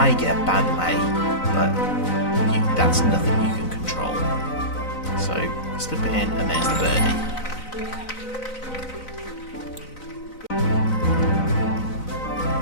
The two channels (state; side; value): late; right; 3.9 ms